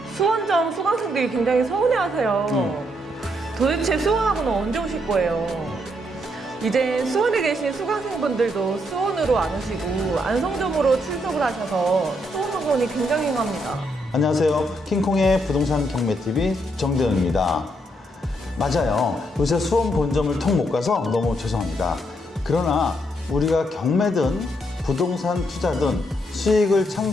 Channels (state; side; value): normal; both; correlation 0.76